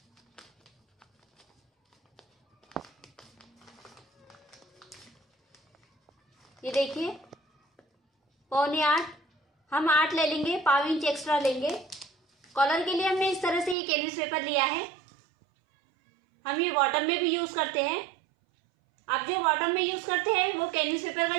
ये देखिए 7.25 हम 8 ले लेंगे, 1/4 इंच एक्स्ट्रा लेंगे। कॉलर के लिए हमने इस तरह से ये कैनवस पेपर लिया है। हम ये बॉटम में भी यूज करते हैं। आप जो बॉटम में यूज करते हैं वो कैनवस पेपर का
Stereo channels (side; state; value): left; drops out; at 13.8 s